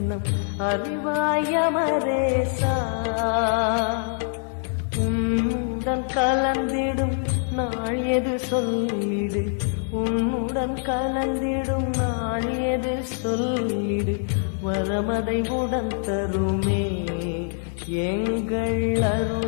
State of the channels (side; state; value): right; silent; 60 dB below the other